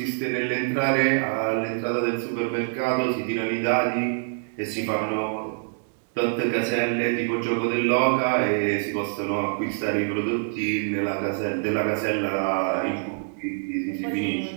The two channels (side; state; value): left; silent; digital silence